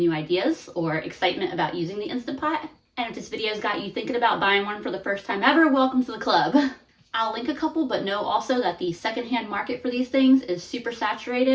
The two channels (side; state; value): both; identical; correlation 1.00